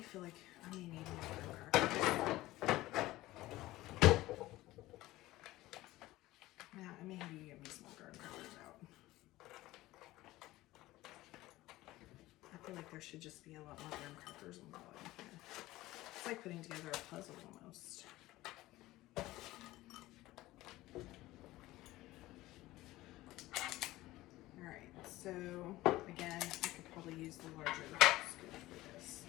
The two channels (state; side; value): quieter; right; 17.5 dB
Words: feel like I may need more crackers. Yeah, I may have you give me some more. feel like there should just be a lot more graham crackers on the bottom here. It's like putting together a puzzle almost. Alright, so again, I could probably use the larger scoop for this.